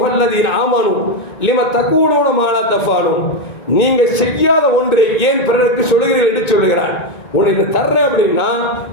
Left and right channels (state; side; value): late; right; 2.2 ms